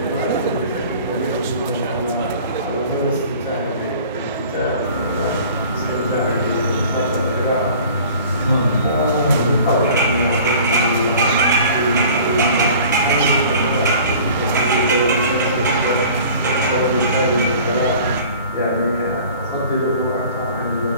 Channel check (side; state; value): both; inverted; correlation -0.46